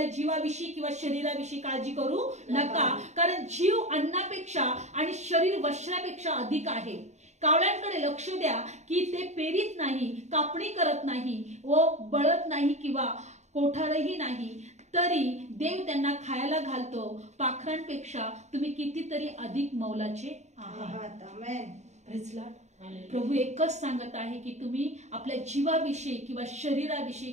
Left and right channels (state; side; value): late; left; 0.33 ms